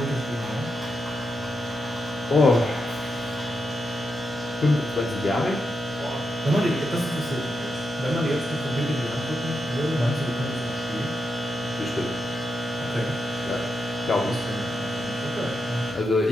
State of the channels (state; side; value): normal; both; correlation 0.85